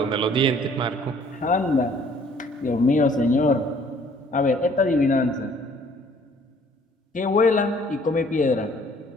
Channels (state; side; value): normal; both; correlation 0.58